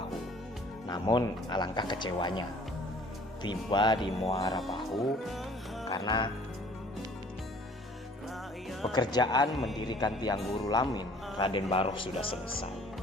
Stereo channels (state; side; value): normal; both; correlation 0.53